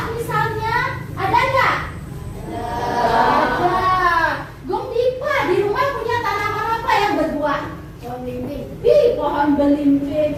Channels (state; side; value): identical; both; correlation 1.00